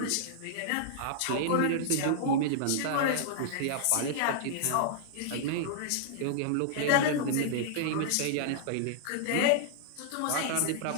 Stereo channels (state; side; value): different; both; correlation -0.01